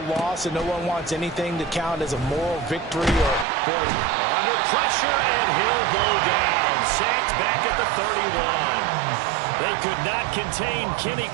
and no one wants anything to count as a moral victory or point. Under pressure, and he'll go down. Sacked back at the 31. They could not contain Kenny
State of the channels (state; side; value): drops out; left; at 3.5 s